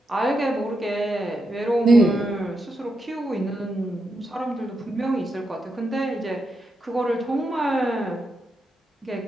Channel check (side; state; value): both; normal; correlation 0.84